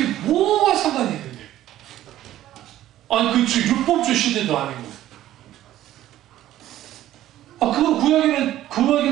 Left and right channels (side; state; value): left; quieter; 13.5 dB